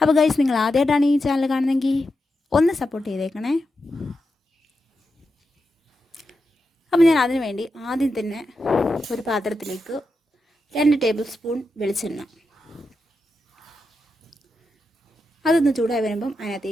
ഗായ്സ്, നിങ്ങൾ ആദ്യമായിട്ടാണ് ഈ ചാനൽ കാണുന്നതെങ്കിൽ ഒന്ന് സപ്പോർട്ട് ചെയ്തേക്കണേ. അപ്പോൾ ഞാൻ അതിനു വേണ്ടി ആദ്യം തന്നെ ഒരു പാത്രത്തിലേക്ക് 2 ടേബിൾ സ്പൂൺ വെളിച്ചെണ്ണ, അതൊന്ന് ചൂടായി വരുമ്പം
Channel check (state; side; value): normal; both; correlation 0.88